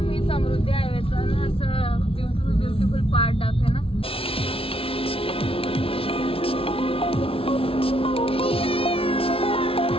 समृद्धी हायवेचा ना असं ब्युटिफुल पार्ट दाखवे ना.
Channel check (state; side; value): late; right; 0.26 ms